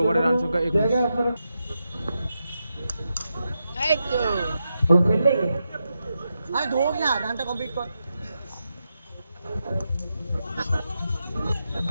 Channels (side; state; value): both; inverted; correlation -0.87